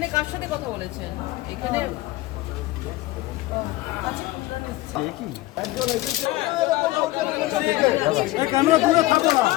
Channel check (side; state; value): right; quieter; 18.3 dB